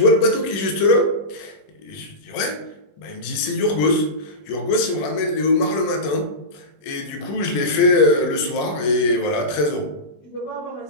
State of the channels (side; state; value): right; late; 21 ms